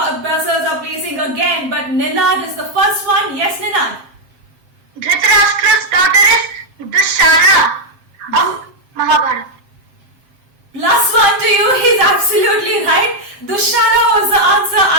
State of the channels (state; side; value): late; left; 7.5 ms